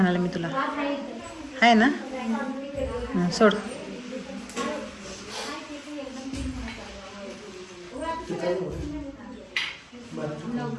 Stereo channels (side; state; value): both; identical; correlation 1.00